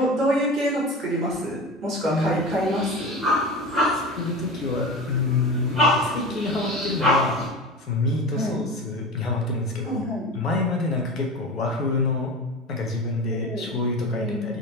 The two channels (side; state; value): both; normal; correlation 0.30